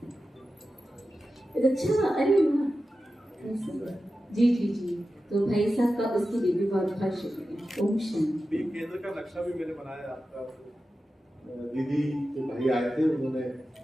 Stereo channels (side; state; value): both; normal; correlation 0.93